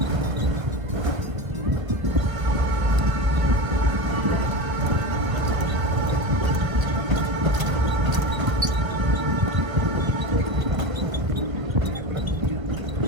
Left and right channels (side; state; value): left; late; 1.5 ms